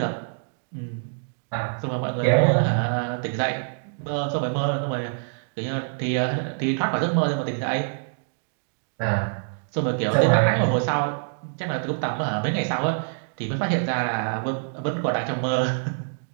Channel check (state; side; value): silent; left; digital silence